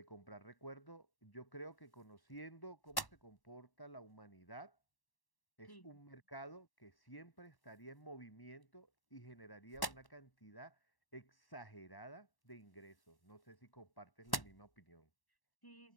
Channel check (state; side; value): late; right; 1.1 ms